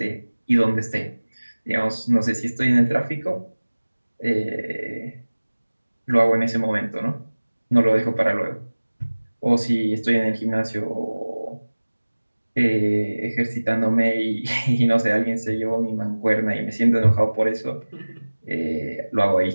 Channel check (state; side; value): inverted; both; correlation -1.00